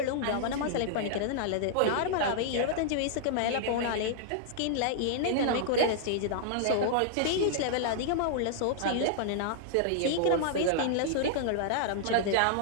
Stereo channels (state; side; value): different; both; correlation -0.01